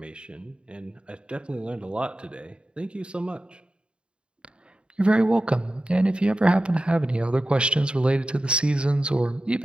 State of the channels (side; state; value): left; late; 0.053 ms